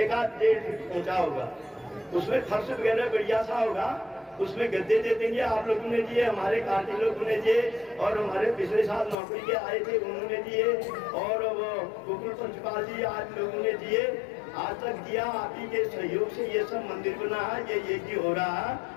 फीट ऊंचा होगा। उसमें फर्श वगैरह बढ़िया सा होगा, उसमें गद्दे दे देंगे। आप लोगों ने दिए, हमारे कार्य लोगों ने दिए, और हमारे पिछले साल नौकरी के आए थे उन्होंने दिए, और वो गोकुल पंचपाल जी आज लोगों ने दिए, आज तक दिया। आप ही के सहयोग से ये सब मंदिर बना है, ये यज्ञ हो रहा है।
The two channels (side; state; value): right; drops out; at 9.2 s